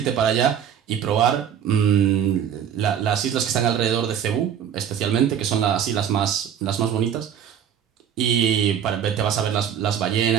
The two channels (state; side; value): quieter; left; 8.9 dB